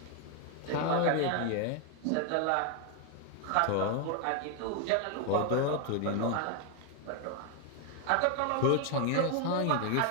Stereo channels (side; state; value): both; different; correlation 0.01